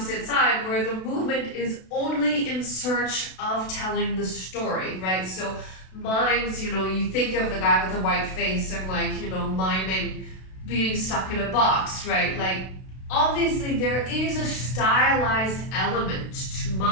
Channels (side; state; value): right; late; 32 ms